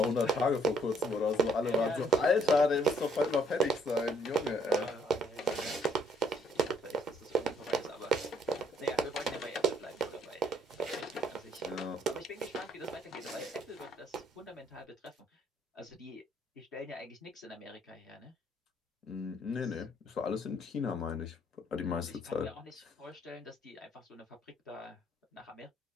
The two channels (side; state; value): both; normal; correlation 0.66